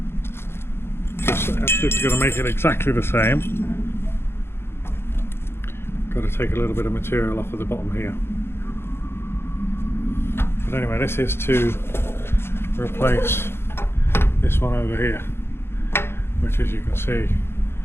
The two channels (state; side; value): late; right; 0.12 ms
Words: Just actually going to make it exactly the same. Got to take a little bit of material off of the bottom here. But anyway, this is to replace this one over here, which, as you can see,